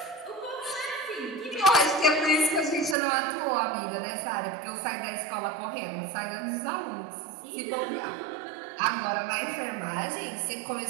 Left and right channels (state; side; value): drops out; left; at 3.0 s